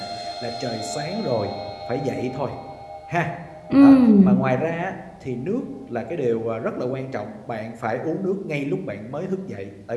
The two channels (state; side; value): identical; both; correlation 1.00